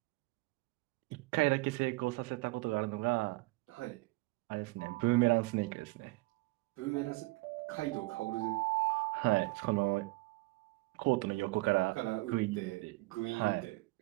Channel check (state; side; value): quieter; left; 22.9 dB